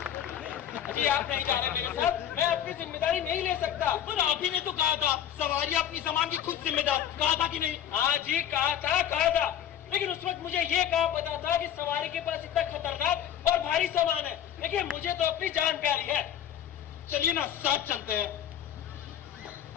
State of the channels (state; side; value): quieter; right; 10.1 dB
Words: अजी आप नहीं जा रहे मेरे साथ, मैं अपनी जिम्मेदारी नहीं ले सकता। पर आप ही ने तो कहा था सवारी अपनी सामान की खुद जिम्मेदार, कहा था कि नहीं? हाँ जी कहा था, लेकिन उस वक्त मुझे ये कहा पता था कि सवारी के पास इतना खतरनाक और भारी सामान है, लेकिन मुझे तो अपनी जान प्यारी है। चलिए ना साथ चलते हैं।